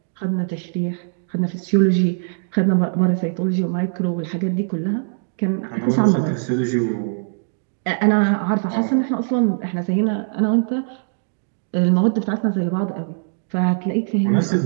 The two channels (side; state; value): left; silent; digital silence